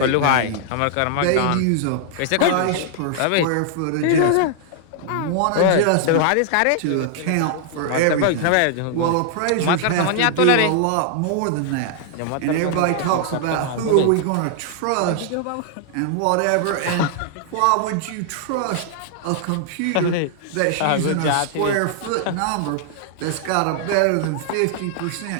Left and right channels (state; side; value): different; both; correlation -0.01